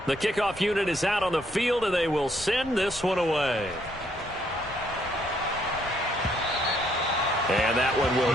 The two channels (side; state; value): both; normal; correlation 0.70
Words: The kickoff unit is out on the field, and they will send this one away. And that one will